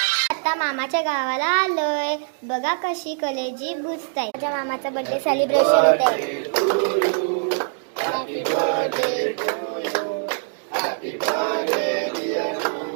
आता मामाच्या गावाला आलोय. बघा कशी कलेजी बुजताय. माझ्या मामाचा बर्थडे सेलिब्रेशन होत आहे. Happy birthday to you, happy birthday dear you,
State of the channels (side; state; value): left; silent; digital silence